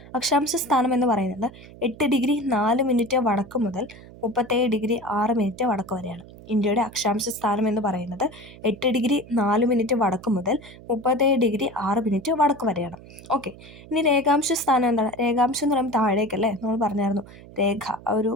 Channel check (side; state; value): right; noise; hum, 19 dB below the sound